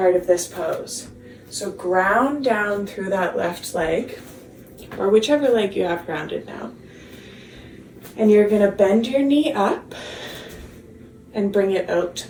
of this pose. So ground down through that left leg, or whichever leg you have grounded now. And you're going to bend your knee up and bring it out to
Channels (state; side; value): identical; both; correlation 1.00